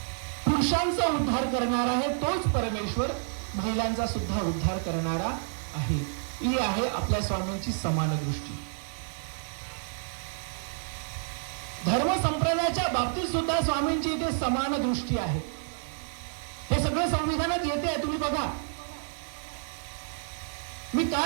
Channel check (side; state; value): left; silent; digital silence